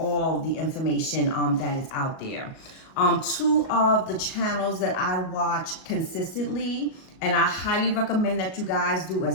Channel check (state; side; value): late; right; 38 ms